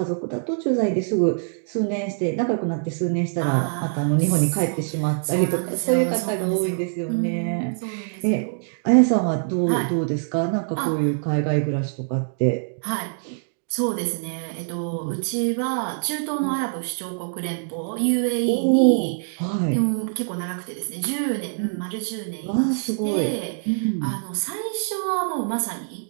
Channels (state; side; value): silent; left; digital silence